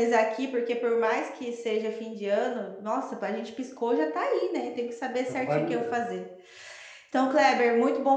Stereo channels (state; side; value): identical; both; correlation 1.00